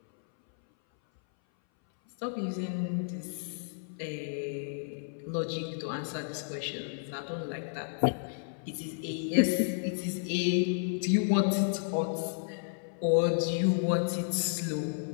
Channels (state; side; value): silent; right; 57 dB below the other